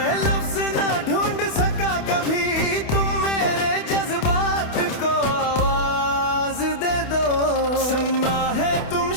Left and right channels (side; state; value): right; late; 28 ms